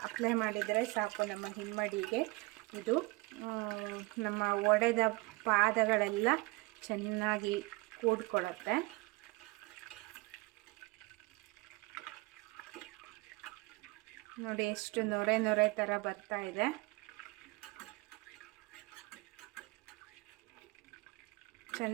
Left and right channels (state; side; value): quieter; left; 23.4 dB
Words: ಅಪ್ಲೈ ಮಾಡಿದರೆ ಸಾಕು ನಮ್ಮ ಹಿಮ್ಮಡಿಗೆ. ಇದು ನಮ್ಮ ಒಡೆದ ಪಾದಗಳೆಲ್ಲ ಚೆನ್ನಾಗಿ ಕೂಡ್ಕೊಳ್ಳುತ್ತೆ. ನೋಡಿ, ಎಷ್ಟು ನೊರೆ ಥರ ಬರ್ತಾ ಇದೆ.